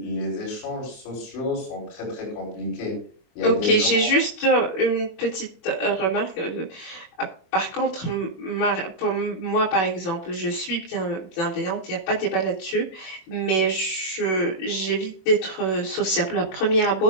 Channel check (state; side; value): late; right; 24 ms